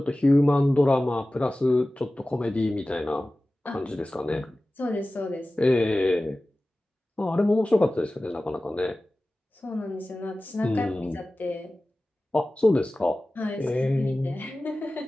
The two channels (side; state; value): both; normal; correlation 0.96